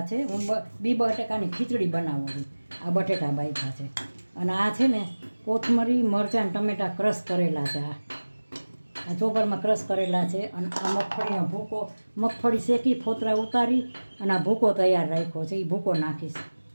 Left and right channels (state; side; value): inverted; both; correlation -1.00